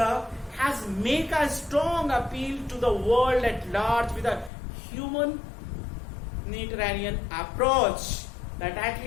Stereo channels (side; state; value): right; drops out; at 4.5 s